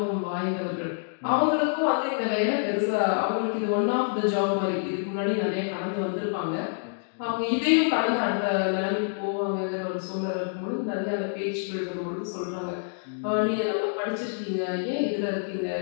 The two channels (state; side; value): silent; right; digital silence